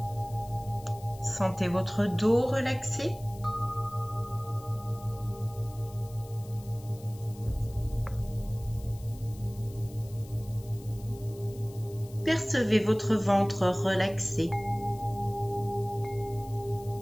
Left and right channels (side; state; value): left; noise; hiss, 22 dB below the sound